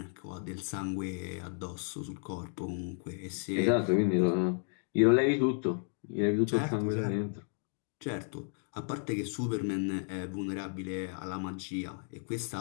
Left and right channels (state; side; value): silent; right; 56 dB below the other